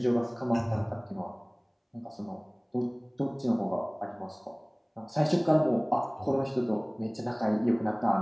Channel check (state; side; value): identical; both; correlation 1.00